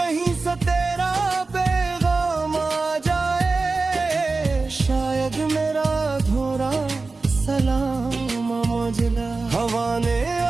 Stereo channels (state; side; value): quieter; left; 3.8 dB